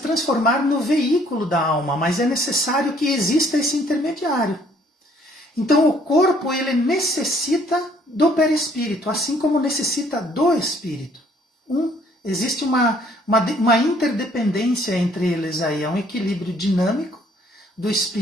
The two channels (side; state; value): both; normal; correlation 0.62